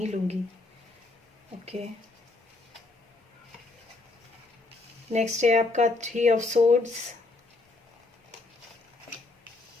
लूंगी। ओके, नेक्स्ट है आपका 3 of swords,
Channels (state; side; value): quieter; right; 3.3 dB